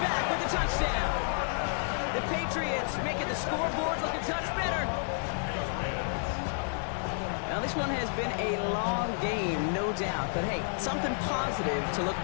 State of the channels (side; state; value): right; silent; 57 dB below the other